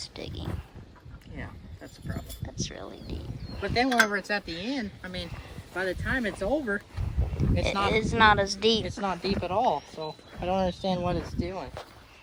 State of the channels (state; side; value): identical; both; correlation 1.00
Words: digging. Yeah, that's the problem. That's really deep. But then whenever it's at the end, I mean, by the time it's over, it's not as deep. It's not deep at all. So I don't understand what it's doing.